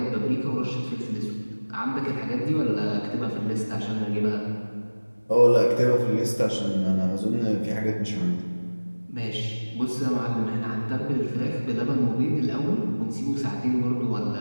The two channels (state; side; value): inverted; both; correlation -1.00